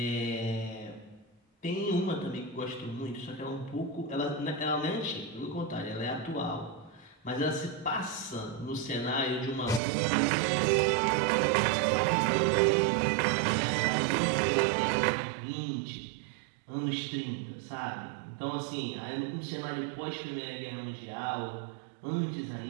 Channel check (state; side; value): drops out; left; at 9.8 s